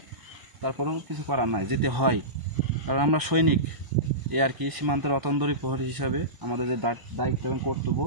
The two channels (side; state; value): left; late; 1.0 ms